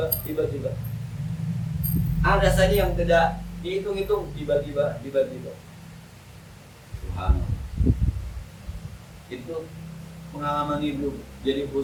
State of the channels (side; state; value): both; identical; correlation 1.00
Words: Ada saja yang tidak dihitung-hitung, tiba-tiba. Subhanallah. Itu pengalaman hidup jadi